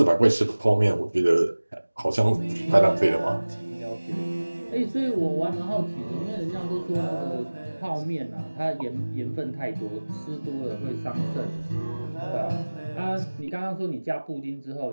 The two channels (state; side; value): inverted; both; correlation -1.00